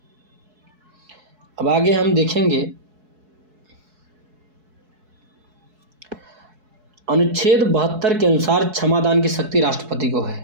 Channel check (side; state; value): left; late; 4.7 ms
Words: अब आगे हम देखेंगे अनुच्छेद 72 के अनुसार क्षमादान की शक्ति राष्ट्रपति को